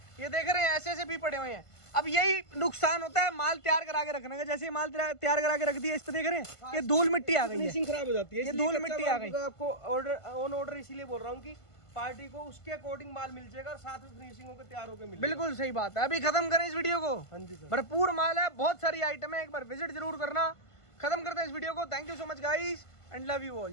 ये देख रहे हैं ऐसे ऐसे भी पड़े हुए हैं। अब यही नुकसान होता है माल तैयार करा के रखने का। जैसे ये माल तैयार करा के रख दिया, इस पे देख रहे हैं ये धूल मिट्टी आ गई है। फिनिशिंग खराब हो जाती है, ये इसलिए धूल कच्चा मिट्टी माल आ गई। मैं आपको ऑर्डर ऑन ऑर्डर इसीलिए बोल रहा हूँ कि पार्टी को उसके अकॉर्डिंग माल मिल जाएगा और साथ में फिनिशिंग होकर तैयार होकर मिलेगा। बिल्कुल सही बात है। अभी खत्म करें इस वीडियो को। हाँ जी सर। भरपूर माल है, बहुत सारी आइटम है, एक बार विजिट जरूर करना। खत्म करते हैं इस वीडियो को। Thank you so much guys and love you all.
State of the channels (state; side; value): late; right; 1.5 ms